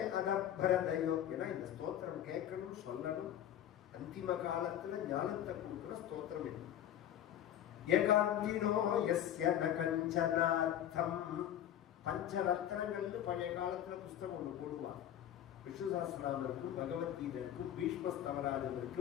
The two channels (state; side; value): quieter; right; 11.0 dB